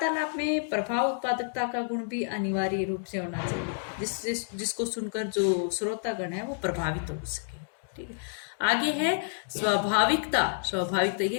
में प्रभाव उत्पादकता का गुण भी अनिवार्य रूप से होना चाहिए जिसको सुनकर जो श्रोतागण है वो प्रभावित हो सके। ठीक है, आगे है स्वाभाविकता। स्वाभाविकता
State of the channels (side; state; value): right; silent; digital silence